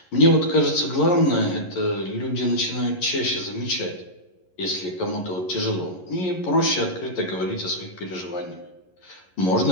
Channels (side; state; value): right; late; 11 ms